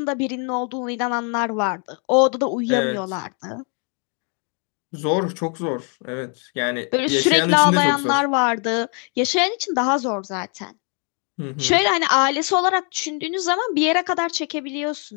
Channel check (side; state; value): right; quieter; 39.8 dB